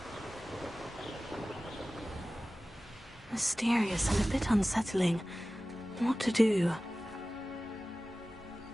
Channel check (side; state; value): both; normal; correlation 0.96